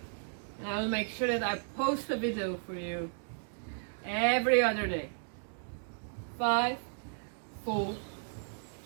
And I will make sure that I post a video for you every other day. 5, 4,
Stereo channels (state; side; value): silent; left; digital silence